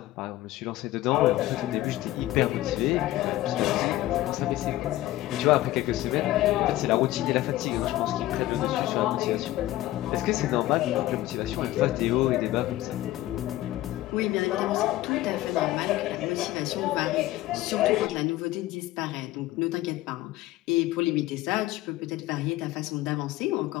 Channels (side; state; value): right; quieter; 16.0 dB